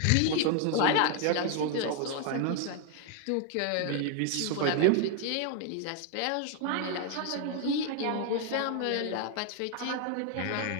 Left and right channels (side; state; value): both; different; correlation 0.00